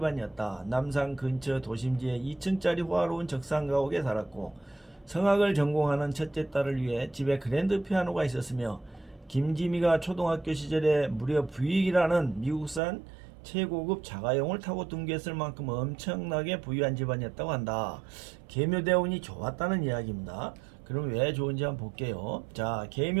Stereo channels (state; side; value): drops out; left; at 12.8 s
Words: 남산 근처 도심지에 2층짜리 호화로운 적상가옥에 살았고 성악을 전공하는 첫째 딸을 위해 집에 그랜드 피아노가 있었으며 김지미가 초등학교 시절에 무려 부익이라는 미국산 최고급 자가용을 타고 등교했을 만큼 엄청나게 부유한 집안이었다고 한다. 계묘대운이 좋았다는 이야기입니다. 그럼 왜 좋은지 한번 볼게요. 자,